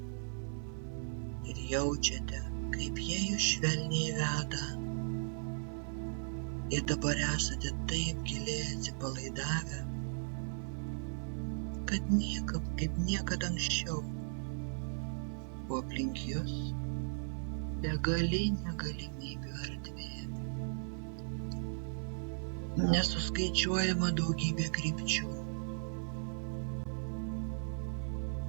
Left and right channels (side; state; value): left; silent; 53 dB below the other